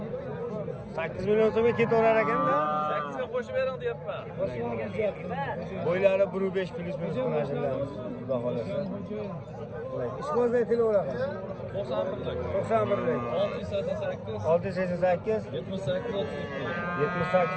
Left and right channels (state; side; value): identical; both; correlation 1.00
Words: 8 million so'mga ketaverar ekanda. 8 ga qo'shib bering deyapman. Bo'ylari 1.5 plus minus qilashimiz. Xudo xolasa. Ishqozda aytilaveradi. 91lik. 688